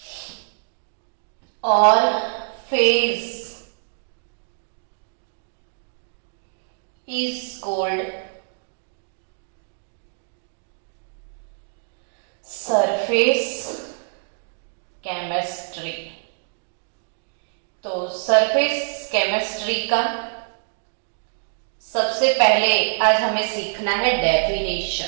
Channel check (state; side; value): silent; left; digital silence